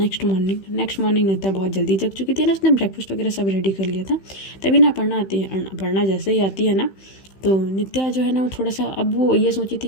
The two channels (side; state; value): right; late; 15 ms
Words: मॉर्निंग नित्या बहुत जल्दी जग चुकी थी ना, उसने ब्रेकफास्ट वगैरह सब रेडी कर लिया था। तभी ना अपर्णा आती है, अपर्णा जैसे ही आती है ना तो नित्या जो है ना वो थोड़ा सा, अब वो ये सोची थी